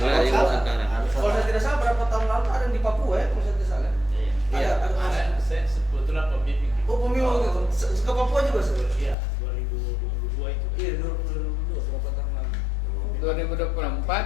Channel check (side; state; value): right; drops out; at 9.2 s